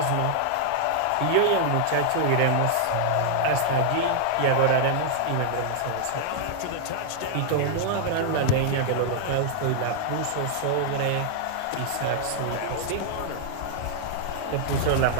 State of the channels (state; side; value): different; both; correlation -0.01